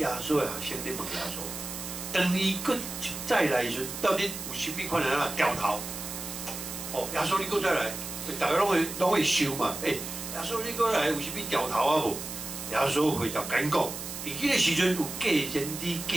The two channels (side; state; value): right; noise; hiss, 8 dB below the sound